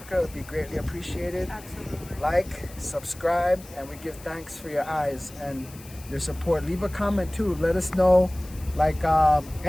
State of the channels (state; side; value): noise; left; hiss, 20 dB below the sound